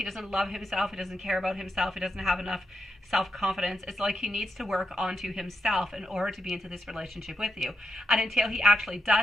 doesn't love himself, he doesn't care about himself, he doesn't have enough self-confidence. It's like he needs to work onto himself in order to be into this relationship with you. And until he actually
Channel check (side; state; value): both; normal; correlation 0.85